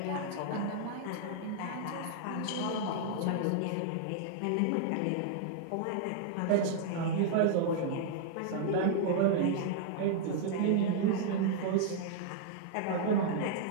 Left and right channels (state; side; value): different; both; correlation -0.01